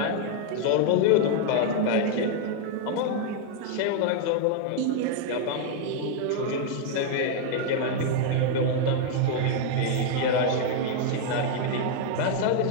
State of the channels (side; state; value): both; different; correlation 0.00